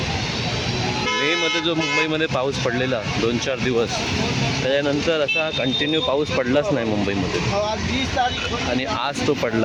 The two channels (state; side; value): identical; both; correlation 1.00